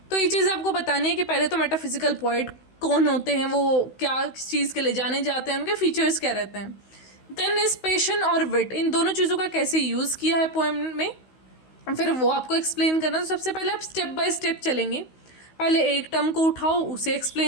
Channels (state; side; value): late; right; 16 ms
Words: तो ये चीज़ आपको बतानी है कि पहले तो मेटाफिजिकल पोइट कौन होते हैं, वो क्या चीज़ के लिए जाने जाते हैं, उनके फीचर्स क्या रहते हैं। देन इस पैशन और विट, इन दोनों चीज़ों का कैसे यूज़ किया है पोएम में, फिर वो आपको एक्सप्लेन करना। तो सबसे पहले आप स्टेप बाय स्टेप चलेंगे। पहले एक टर्म को उठाओ, उसे